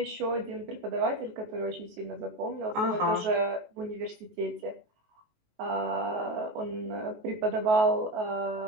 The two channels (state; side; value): late; left; 19 ms